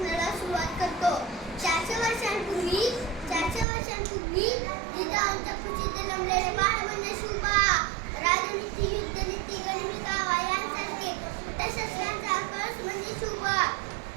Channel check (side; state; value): left; drops out; at 3.7 s